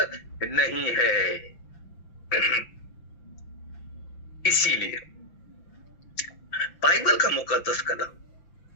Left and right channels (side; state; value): right; late; 5.9 ms